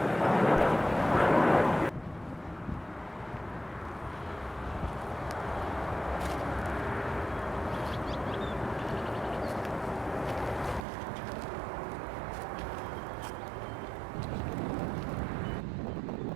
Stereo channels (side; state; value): left; drops out; at 10.9 s